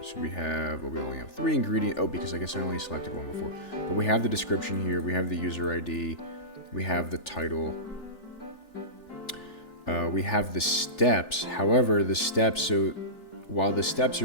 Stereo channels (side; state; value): right; late; 3.4 ms